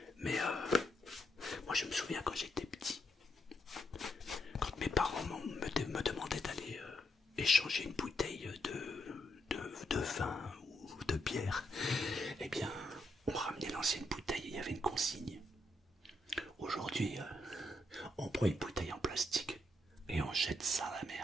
Mais moi je me souviens quand j'étais petit, quand mes parents me demandaient d'aller échanger une bouteille de vin ou de bière, eh bien on ramenait l'ancienne bouteille et il y avait une consigne. Aujourd'hui on prend une bouteille en plastique et on jette ça à la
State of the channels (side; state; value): both; normal; correlation 0.79